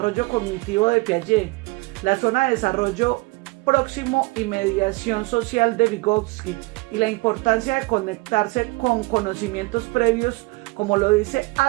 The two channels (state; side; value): quieter; left; 25.3 dB